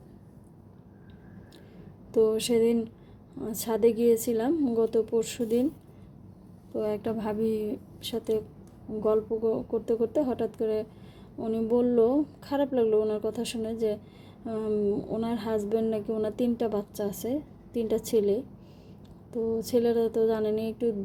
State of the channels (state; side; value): identical; both; correlation 1.00